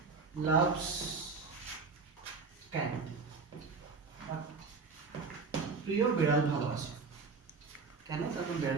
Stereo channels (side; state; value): left; quieter; 4.7 dB